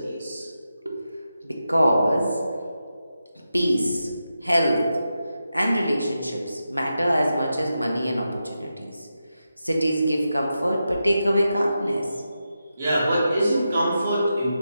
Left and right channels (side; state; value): both; inverted; correlation -0.89